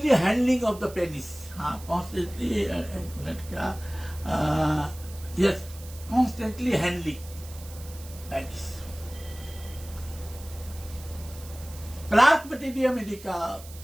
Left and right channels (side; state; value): right; noise; hiss, 18 dB below the sound